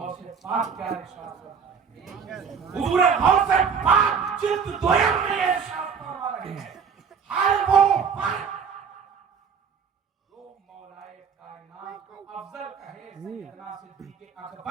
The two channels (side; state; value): left; quieter; 6.4 dB